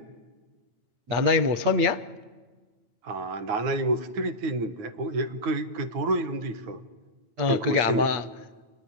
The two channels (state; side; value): late; left; 9.0 ms